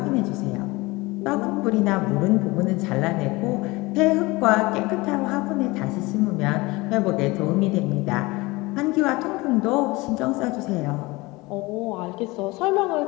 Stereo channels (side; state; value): right; quieter; 22.6 dB